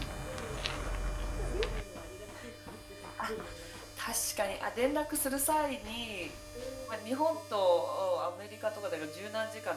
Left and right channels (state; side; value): identical; both; correlation 1.00